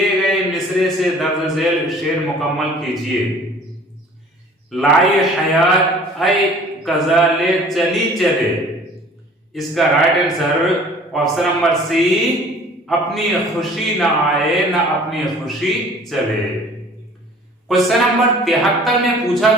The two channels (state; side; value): normal; both; correlation 0.50